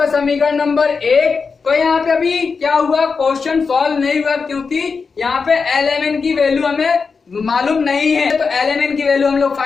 समीकरण नंबर 1। तो यहाँ पे अभी क्या हुआ, क्वेश्चन सॉल्व नहीं हुआ क्योंकि यहाँ पे LMN की वैल्यू हमें मालूम नहीं है। तो LMN की वैल्यू हम लोग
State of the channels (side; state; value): right; quieter; 5.0 dB